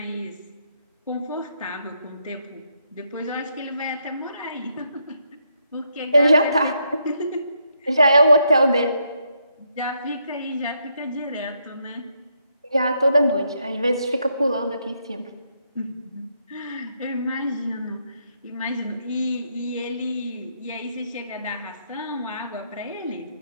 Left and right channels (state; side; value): inverted; both; correlation -0.77